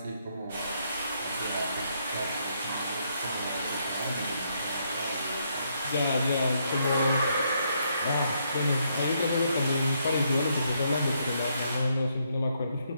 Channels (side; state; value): both; inverted; correlation -0.75